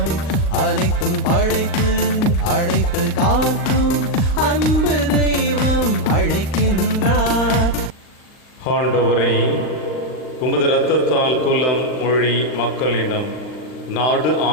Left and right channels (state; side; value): late; right; 39 ms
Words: அனைத்தும் படைத்து அழைத்து காக்கும் அன்பு தெய்வம் அழைக்கின்றார். ஆண்டவரே, உமது இரத்தத்தால் குலம், மொழி, மக்களினம், நாடு